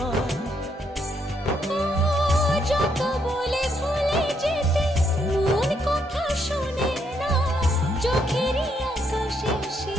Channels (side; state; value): both; normal; correlation 0.75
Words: যত বলে ভুলে যেতে মন কথা শোনে না, চোখেরই আকাশে সে